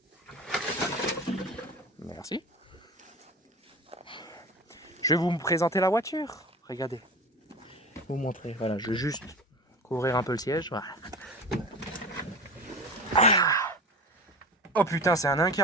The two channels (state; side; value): normal; both; correlation 0.32